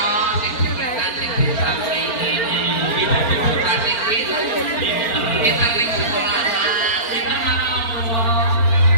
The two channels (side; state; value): right; late; 4.4 ms